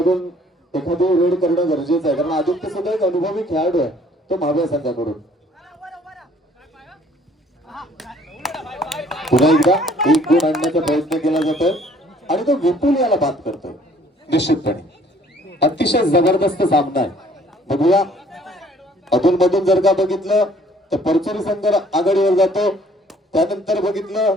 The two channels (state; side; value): normal; both; correlation 0.58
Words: एखादी रेड करणं गरजेचं आहे, कारण आदित्य सुद्धा एक अनुभवी खेळाडू आहे तो महाव्या संघाकडून. पुन्हा एकदा एक गुण आणण्याचा प्रयत्न केला जातोय आणि तो विपुल याला बाद करतोय. निश्चितपणे अतिशय जबरदस्त सामना आहे. बघूया अधून मधून जर का बघितलं तर परचुरी संघ आघाडीवर जातो, त्यानंतर बघितलं